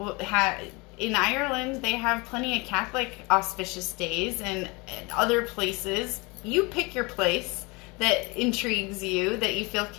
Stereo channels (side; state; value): right; quieter; 26.7 dB